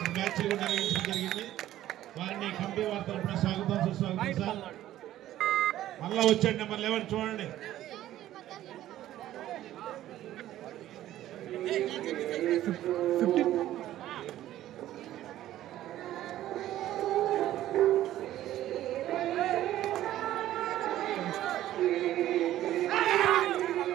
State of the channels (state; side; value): quieter; left; 13.5 dB